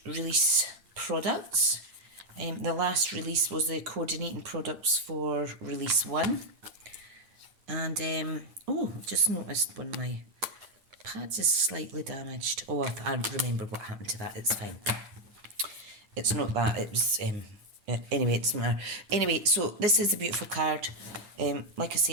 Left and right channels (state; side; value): late; left; 9.6 ms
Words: release products. The last release was the coordinating products for release 1. And, oh, I've just noticed one of my pads is slightly damaged. Oh, I remember what happened to that. It's fine. It's not that. It was, anyway, it doesn't matter. Anyway, so this is a beautiful card. Like I